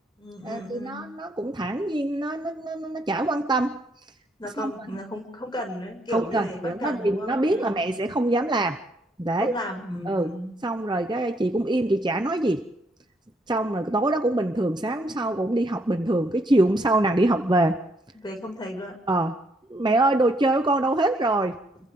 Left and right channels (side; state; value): both; normal; correlation 0.71